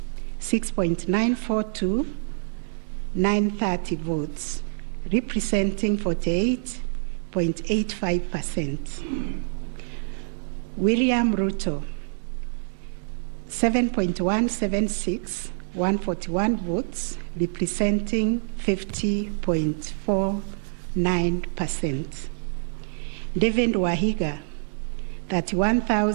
6.942,930 votes, representing 48.85%. William Ruto, 7.176,141 votes, representing 50.49%. David Wahiga,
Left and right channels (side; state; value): left; silent; digital silence